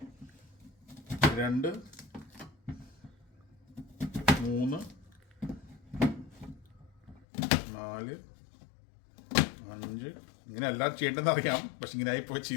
2 3 4 5. ഇങ്ങനെ എല്ലാവരും ചെയ്യേണ്ടതെന്ന് അറിയാം, പക്ഷെ ഇങ്ങനെ ആയിപ്പോ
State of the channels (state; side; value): drops out; right; at 7.2 s